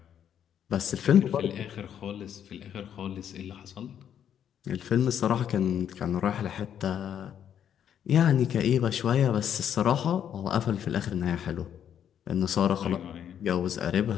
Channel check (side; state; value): right; quieter; 9.3 dB